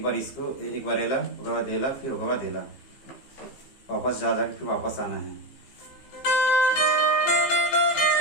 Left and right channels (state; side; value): late; right; 15 ms